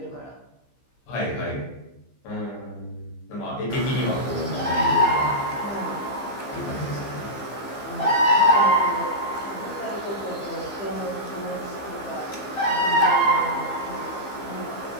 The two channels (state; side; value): late; right; 15 ms